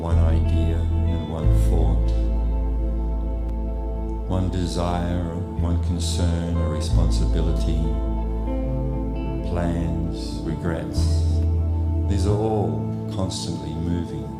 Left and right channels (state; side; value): identical; both; correlation 1.00